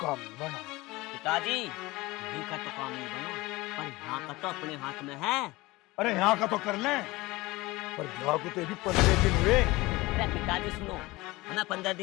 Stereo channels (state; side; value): quieter; right; 20.9 dB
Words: नहीं बना। पिताजी यही का तो काम नहीं बना, पर यहाँ का तो अपने हाथ में है। अरे यहाँ का तो कर ले, पर यहाँ को तो भी 15 दिन हुए। अरे पिताजी सुनो, हमें 15